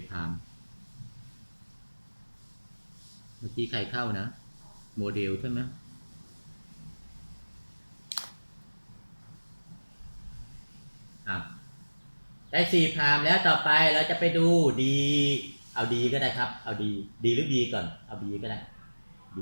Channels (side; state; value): both; inverted; correlation -1.00